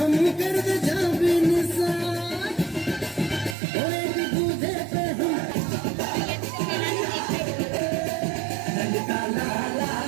कर दे जा भी निशान और एक दूजे पे हम ललका लाला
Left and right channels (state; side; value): drops out; left; at 3.6 s